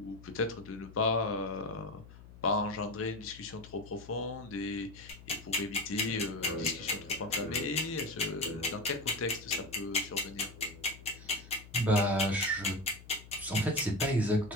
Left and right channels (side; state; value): left; noise; hum, 18 dB below the sound